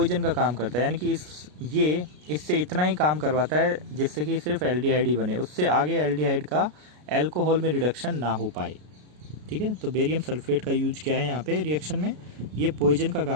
का काम करता है, यानी कि इससे इतना ही काम करवाता है जिससे कि सिर्फ एल्डिहाइड ही बने, उससे आगे एल्डिहाइड का अल्कोहल में रिडक्शन ना हो पाए। ठीक है, तो बेरियम सल्फेट का यूज क्या है यहाँ पे रिएक्शन में, ये पॉइजन का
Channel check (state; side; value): late; left; 33 ms